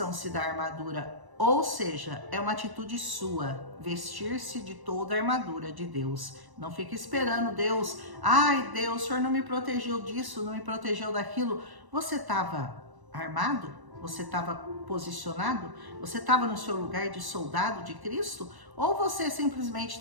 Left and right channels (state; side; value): late; left; 1.1 ms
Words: da armadura. Ou seja, é uma atitude sua, vestir-se de toda a armadura de Deus. Não fique esperando Deus, ai Deus, o Senhor não me protegeu disso, não me protegeu daquilo. Você estava armado? Você estava posicionado? Você estava no seu lugar de soldado de Cristo? Ou você simplesmente